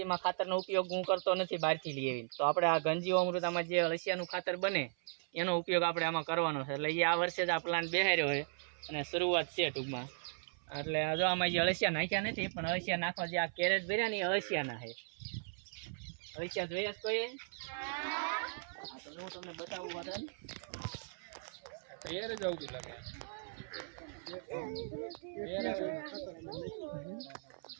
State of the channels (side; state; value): left; silent; 53 dB below the other